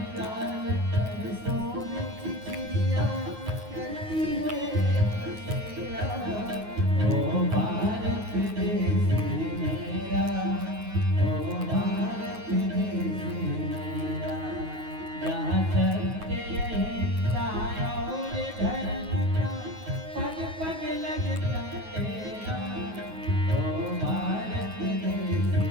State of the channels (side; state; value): left; late; 9.4 ms